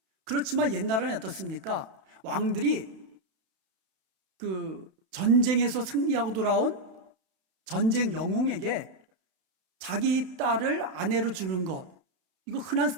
그렇지만 옛날에는 어떻습니까? 왕들이 그 전쟁에서 승리하고 돌아온 전쟁 영웅에게 자기 딸을 아내로 주는 것, 이거 흔한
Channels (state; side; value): late; left; 32 ms